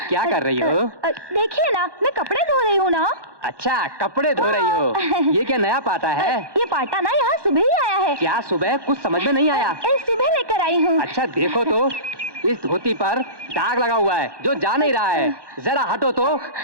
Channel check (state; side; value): late; left; 1.2 ms